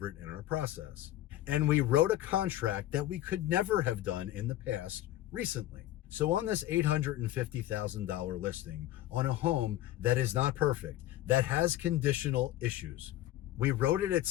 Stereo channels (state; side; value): quieter; right; 14.1 dB